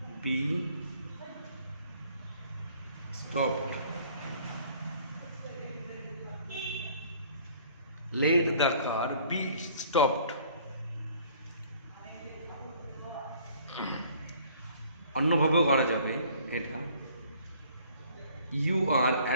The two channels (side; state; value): both; inverted; correlation -0.56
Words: be stopped, let the car be stopped। অন্যভাবেও করা যাবে এটা, you are